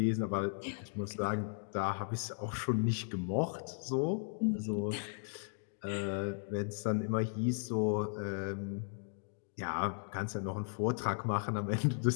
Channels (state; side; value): silent; right; digital silence